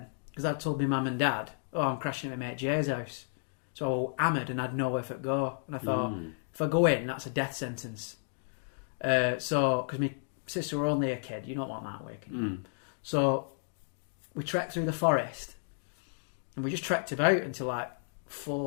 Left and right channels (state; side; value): silent; right; digital silence